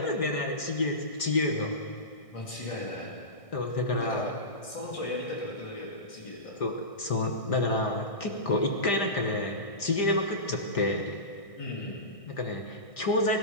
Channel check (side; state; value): right; late; 1.6 ms